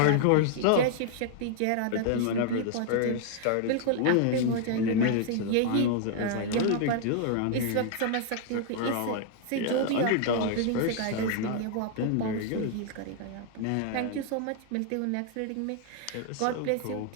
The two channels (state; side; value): different; both; correlation 0.00